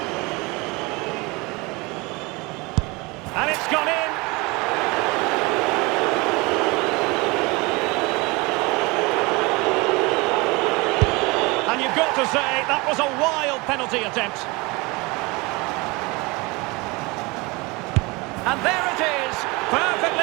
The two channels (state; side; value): quieter; left; 25.3 dB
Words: And it's gone in. And you've got to say, that was a wild penalty attempt. And there it is,